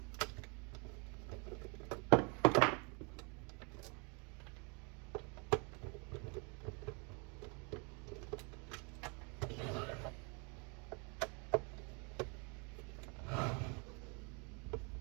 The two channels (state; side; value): quieter; left; 33.6 dB